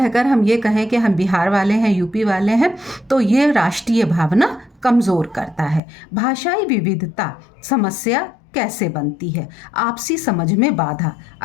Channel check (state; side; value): drops out; right; at 5.8 s